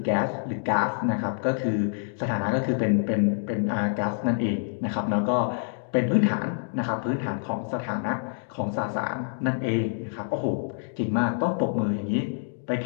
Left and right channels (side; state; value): right; silent; digital silence